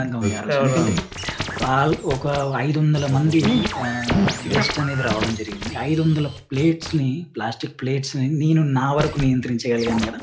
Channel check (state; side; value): identical; both; correlation 1.00